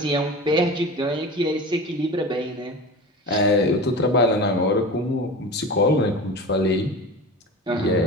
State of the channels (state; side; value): normal; both; correlation 0.32